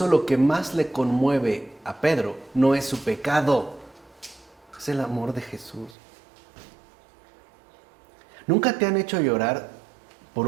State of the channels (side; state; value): left; drops out; at 6.0 s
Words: lo que más le conmueve a Pedro no es su pecado, es el amor de Jesús. ¿Nunca te han hecho llorar por